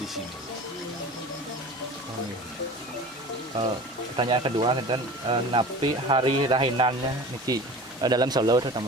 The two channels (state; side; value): normal; both; correlation 0.37